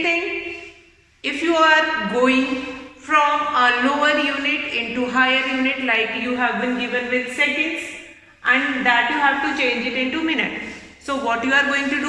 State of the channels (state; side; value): identical; both; correlation 1.00